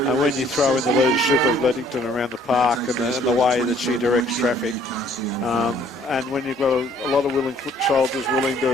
And when you throw in the leadership of Lettington around the park and the way that she directs traffic, and when you've got a lot of willing foot soldiers willing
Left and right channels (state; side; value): normal; both; correlation 0.60